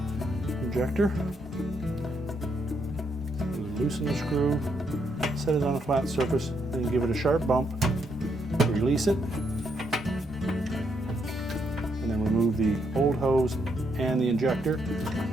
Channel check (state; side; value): normal; both; correlation 0.76